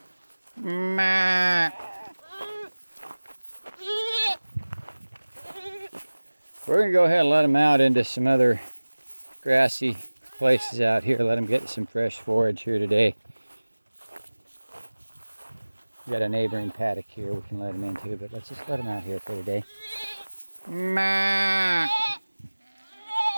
Ma. We're going to go ahead and let them out into some other grassy places out here. Let them get some fresh forage here today. We got a neighboring paddock here we can let them into, but let's just let them out here for today. Ma.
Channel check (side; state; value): both; inverted; correlation -1.00